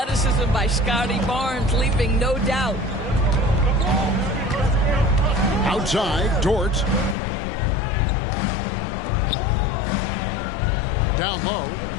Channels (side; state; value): right; drops out; at 7.2 s